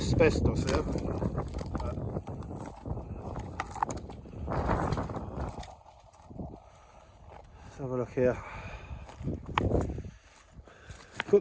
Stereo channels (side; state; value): both; identical; correlation 1.00